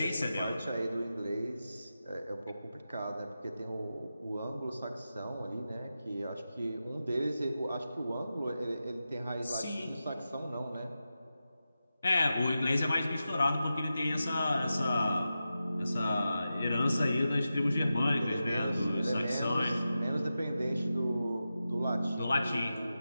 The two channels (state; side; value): inverted; both; correlation -0.91